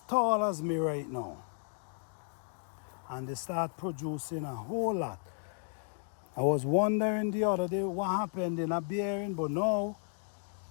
tall as me right now. And they start producing a whole lot. I was wondering the other day what happened in a bearing, but now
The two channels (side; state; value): right; silent; 55 dB below the other